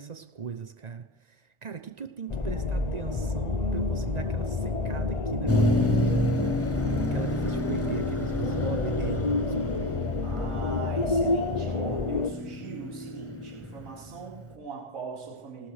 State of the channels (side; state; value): left; late; 1.4 ms